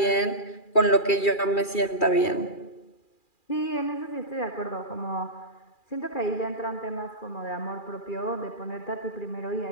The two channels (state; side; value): late; right; 2.4 ms